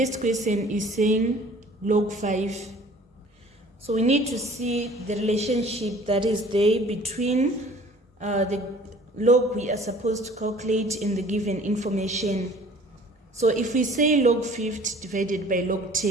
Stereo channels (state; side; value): normal; both; correlation 0.50